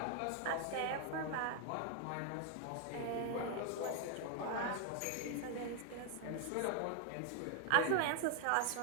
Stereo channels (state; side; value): different; both; correlation 0.00